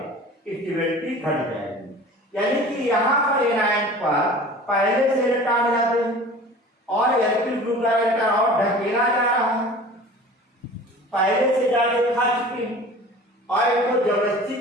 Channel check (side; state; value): both; normal; correlation 0.41